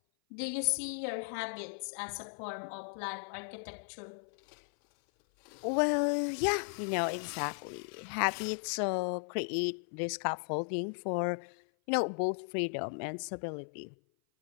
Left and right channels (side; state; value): right; silent; 54 dB below the other